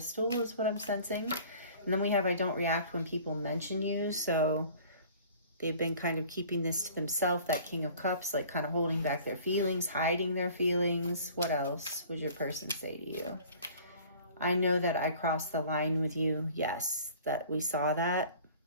is what I'm sensing. And then we have I don't react when people mention you. So They've been kind of keeping this to themselves, that King of Cups, like kind of holding back their feelings, hiding their feelings. What else would your person say to you? I know that I crossed the line with you. Yes, that we saw that.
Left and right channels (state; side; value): inverted; both; correlation -0.48